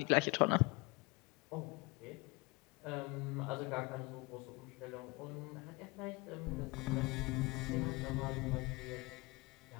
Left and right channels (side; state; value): right; quieter; 25.7 dB